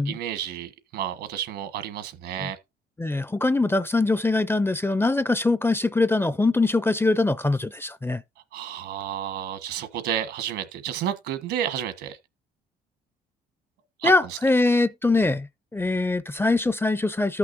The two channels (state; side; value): normal; both; correlation 0.77